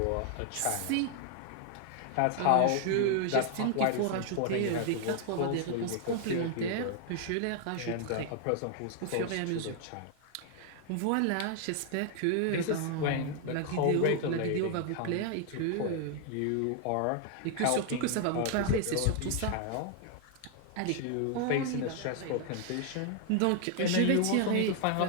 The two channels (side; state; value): both; different; correlation 0.00